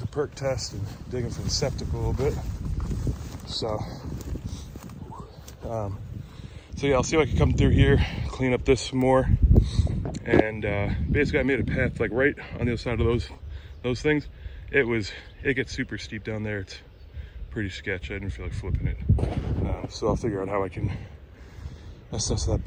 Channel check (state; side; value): identical; both; correlation 1.00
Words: perk test and digging for the septic a little bit. So yeah, I'll see if I can come through here, clean up this some more, and basically I made a path like right on the other side of those things. It gets super steep down there. It's pretty sketchy. I didn't feel like flipping it, so I'll figure out how I can assess that